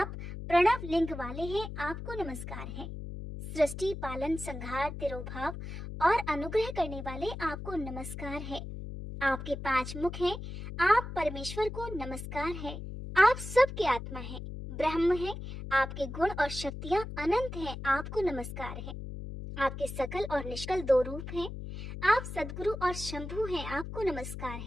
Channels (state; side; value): noise; left; hum, 8 dB below the sound